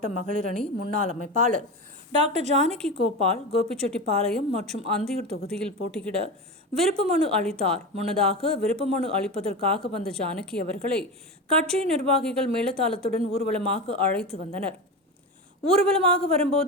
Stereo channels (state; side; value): normal; both; correlation 0.23